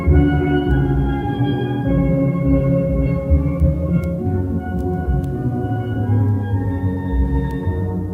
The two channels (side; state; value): both; identical; correlation 1.00